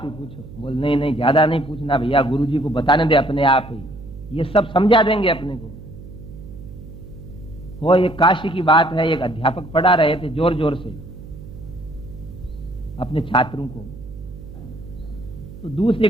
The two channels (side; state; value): right; noise; hum, 15 dB below the sound